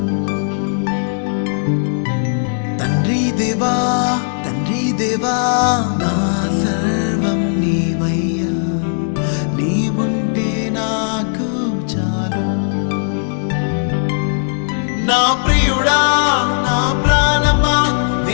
తండ్రి దేవా నా సర్వం నీవయ్యా, నీవుంటే నాకు చాలు. నా ప్రియుడా నా ప్రాణమా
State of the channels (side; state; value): right; silent; 68 dB below the other